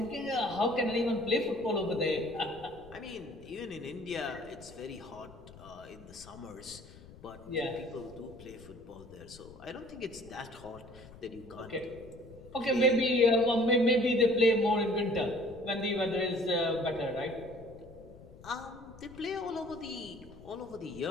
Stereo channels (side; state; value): left; noise; rumble, 19 dB below the sound